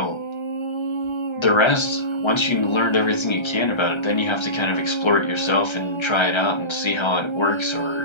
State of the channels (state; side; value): late; right; 1.3 ms